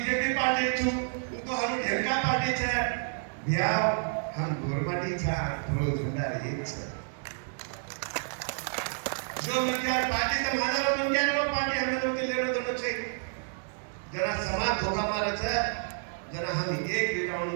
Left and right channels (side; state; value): left; silent; digital silence